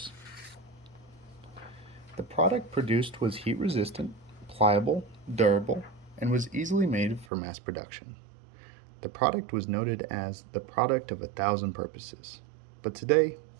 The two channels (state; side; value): drops out; left; at 7.2 s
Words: The product produced was heat resistant, pliable, durable, and was easily made for mass production. The product was noted as the product of 1,000 purposes, but today